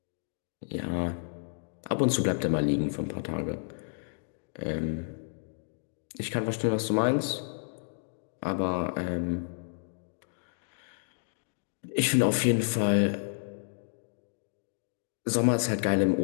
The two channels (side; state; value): right; silent; digital silence